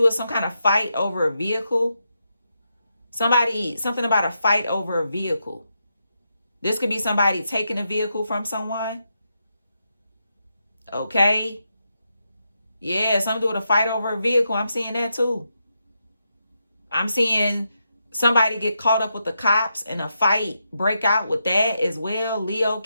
with some kind of fight over a vehicle. Something about a fight over a vehicle. This could be somebody taking a vehicle from someone. Okay? Yeah, something to do with a fight over a vehicle. I'm seeing that too. I'm seeing somebody get caught up with the cops and a fight break out with that as well. Leo,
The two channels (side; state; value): both; inverted; correlation -0.84